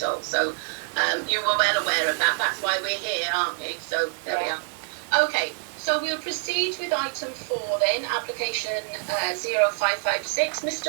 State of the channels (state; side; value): silent; left; 61 dB below the other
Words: So you were well aware of that. That's why we're here, aren't we? So there we are. Okay. So we'll proceed with item 4 then, application 0556.